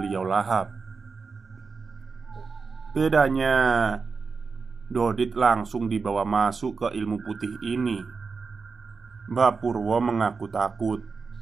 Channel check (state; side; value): quieter; left; 4.8 dB